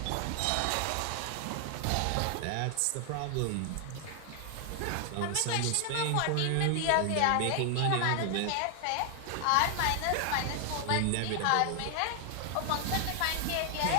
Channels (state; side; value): different; both; correlation 0.00